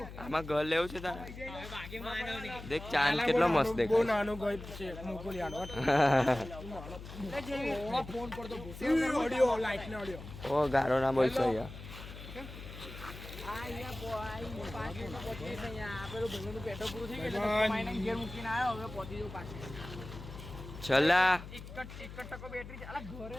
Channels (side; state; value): left; noise; hum, 12 dB below the sound